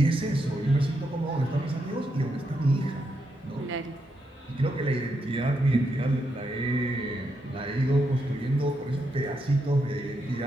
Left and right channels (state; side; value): normal; both; correlation 0.82